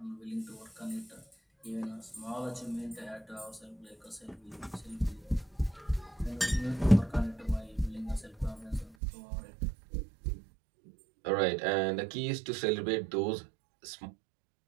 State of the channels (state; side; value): drops out; left; at 9.0 s